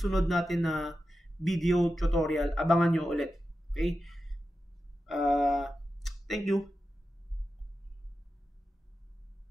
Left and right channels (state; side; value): normal; both; correlation 0.91